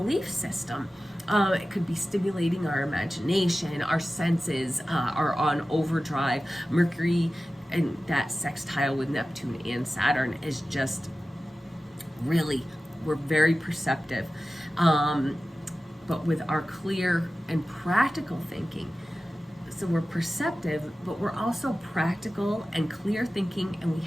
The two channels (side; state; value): both; normal; correlation 0.95